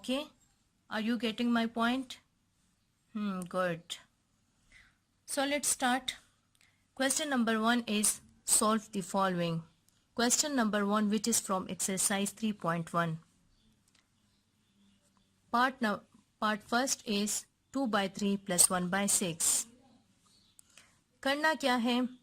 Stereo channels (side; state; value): both; identical; correlation 1.00